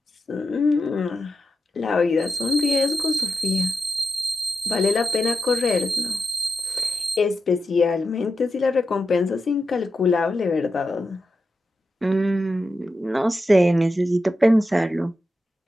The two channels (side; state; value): both; normal; correlation 0.89